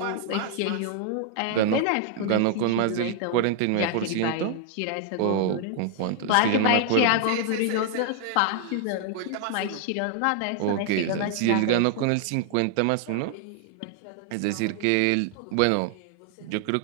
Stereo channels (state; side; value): different; both; correlation 0.00